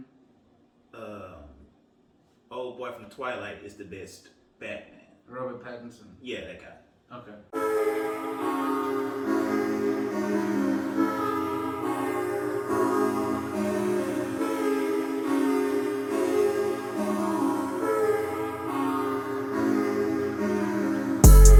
Um, Old boy from Twilight is the best Batman. Robert Pattinson. Yeah, that guy. Okay.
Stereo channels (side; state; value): both; identical; correlation 1.00